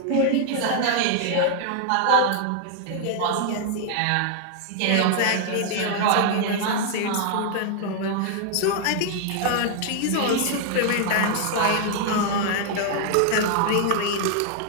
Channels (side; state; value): both; different; correlation 0.00